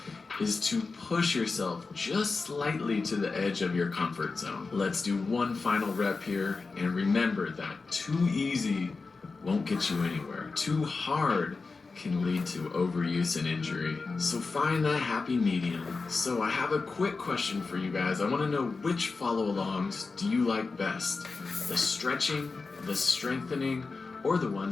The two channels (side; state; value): right; quieter; 4.1 dB